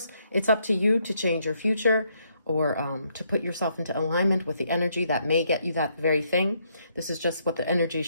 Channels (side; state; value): both; inverted; correlation -0.73